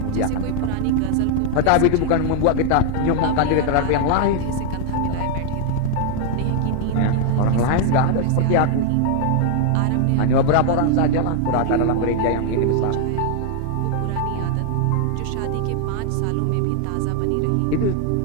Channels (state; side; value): different; both; correlation 0.00